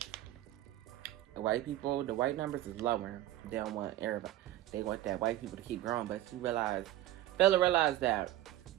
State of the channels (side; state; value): left; quieter; 14.2 dB